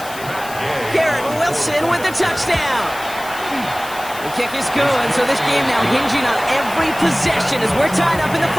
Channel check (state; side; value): noise; left; hiss, 15 dB below the sound